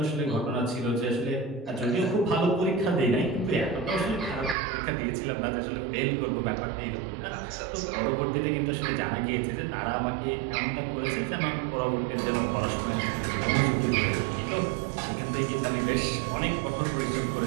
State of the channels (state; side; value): drops out; left; at 4.5 s